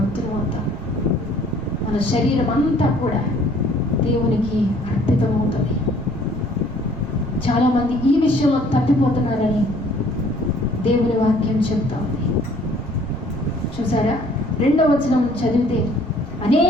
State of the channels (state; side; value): normal; both; correlation 0.58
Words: అవుతాం. మన శరీరం అంతా కూడా దేవునికి అర్పితం అవుతుంది. చాలా మంది ఈ విషయంలో తప్పిపోతున్నారని దేవుని వాక్యం చెప్తా ఉంది. చూసారా, 2వ వచనం చదివితే